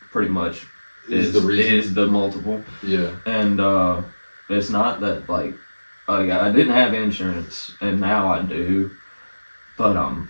pretty much is the multiple. Yeah. And it's not that like I didn't have insurance, and now I do, but I'm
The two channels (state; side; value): inverted; both; correlation -1.00